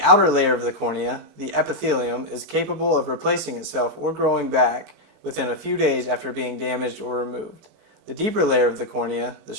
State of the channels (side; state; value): left; late; 4.5 ms